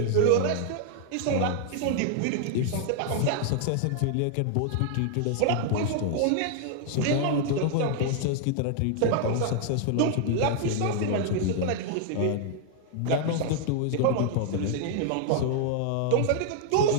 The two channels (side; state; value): both; different; correlation 0.00